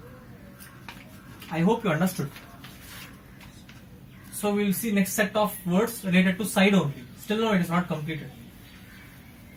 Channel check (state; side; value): identical; both; correlation 1.00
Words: I hope you understood. So we will see next set of words related to side only. Still no, it is not completed.